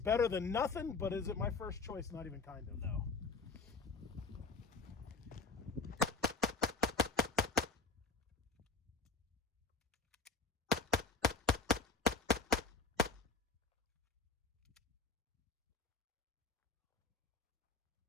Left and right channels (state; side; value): quieter; right; 4.1 dB